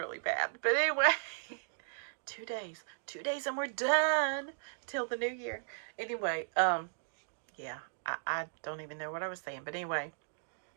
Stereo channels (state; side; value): silent; left; digital silence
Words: bad. But anyway, 2 days and we're done till the new year. Anyway, yeah, I don't even know what I was saying. But anyway,